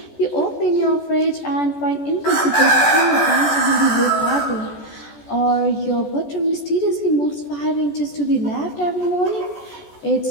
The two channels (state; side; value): late; right; 14 ms